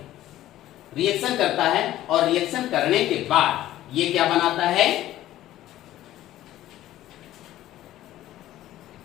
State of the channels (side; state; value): right; quieter; 14.1 dB